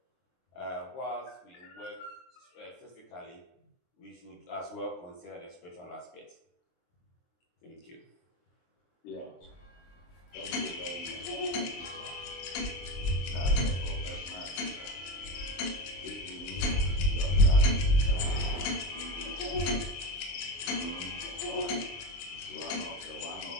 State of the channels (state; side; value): late; right; 23 ms